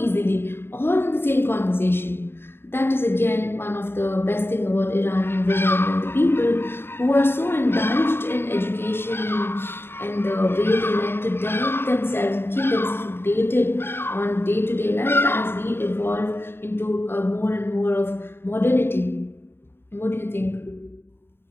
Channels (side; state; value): right; late; 0.11 ms